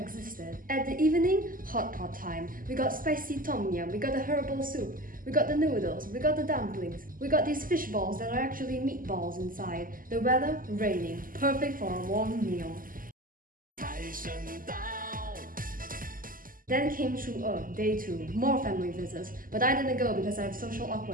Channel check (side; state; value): left; late; 0.41 ms